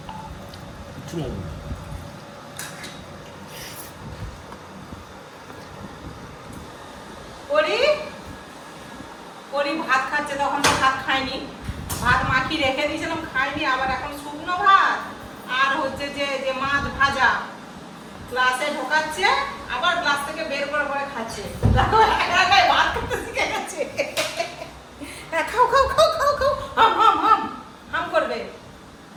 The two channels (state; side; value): identical; both; correlation 1.00